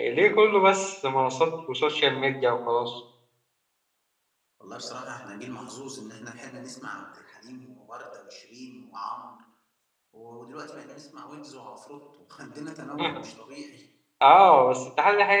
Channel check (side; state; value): both; identical; correlation 1.00